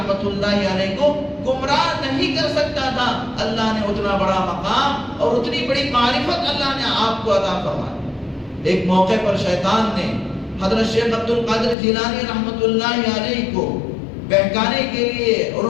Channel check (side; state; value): right; drops out; at 11.8 s